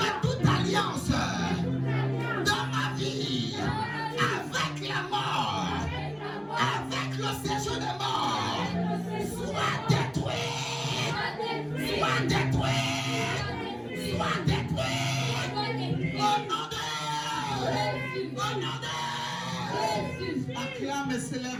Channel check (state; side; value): identical; both; correlation 1.00